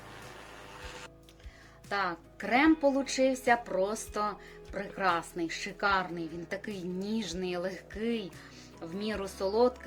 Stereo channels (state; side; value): identical; both; correlation 1.00